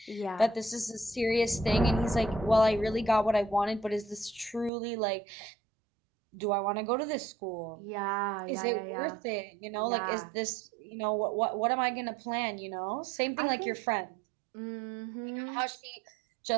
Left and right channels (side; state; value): left; drops out; at 4.7 s